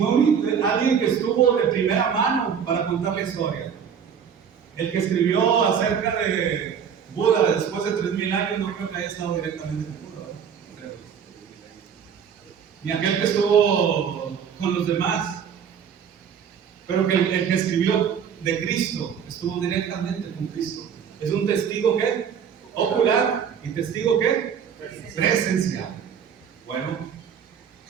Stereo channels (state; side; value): quieter; left; 7.5 dB